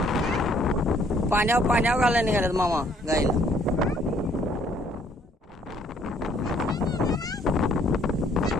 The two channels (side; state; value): both; normal; correlation 0.63